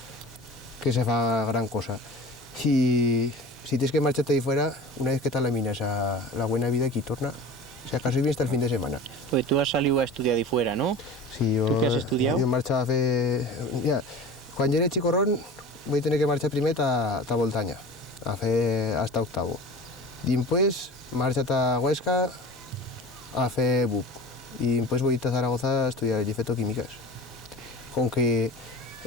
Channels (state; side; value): normal; both; correlation 0.36